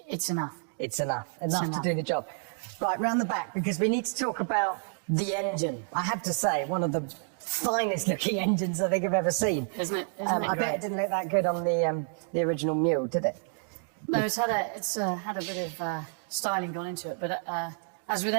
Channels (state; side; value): silent; left; 58 dB below the other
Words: enough. It's enough to do the job. Right, round the back, because we need to talk about the engine. I have to say, one of the finest looking engines I think I've ever seen. Isn't it? I bet it didn't look that good on the original Mule, did it? No, it's had a bit of styling gone into it, but as with